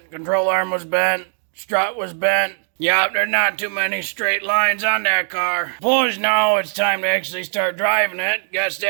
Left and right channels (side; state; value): left; silent; 66 dB below the other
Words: control arm was bent, strut was bent. Yep, there's not too many straight lines on that car. Suppose now it's time to actually start driving it. Guess